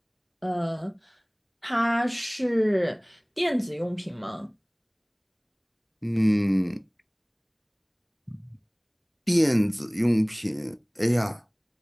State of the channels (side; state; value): both; identical; correlation 1.00